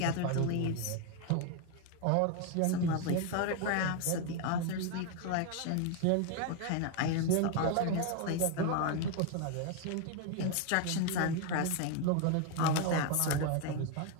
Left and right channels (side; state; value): both; different; correlation 0.01